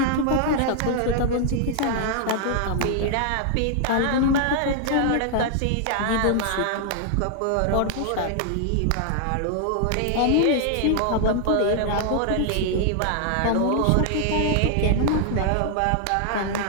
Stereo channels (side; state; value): both; different; correlation 0.00